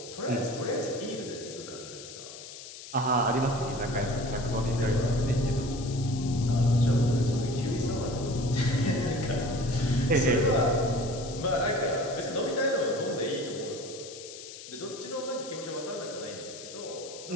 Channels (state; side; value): noise; left; hiss, 13 dB below the sound